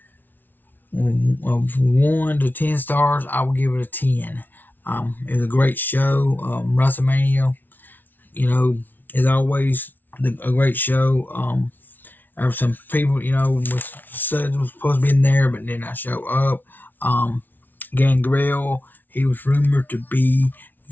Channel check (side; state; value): right; late; 0.087 ms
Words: 1 to 10 stars. I will give it a 10. It was a great show. WrestleMania, is always a great show. There were some people, said was supposed to be in there, but did not show up. Gangrel, he was rumored to be